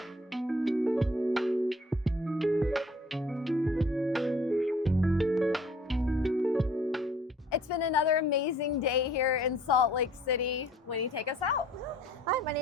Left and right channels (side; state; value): both; normal; correlation 0.55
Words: amazing day here in Salt Lake City. Wenny, take us out. Hi, my